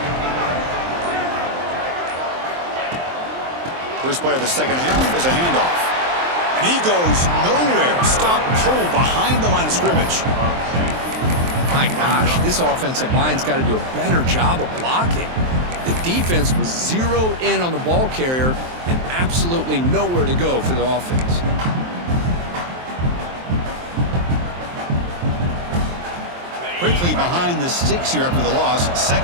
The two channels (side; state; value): left; late; 23 ms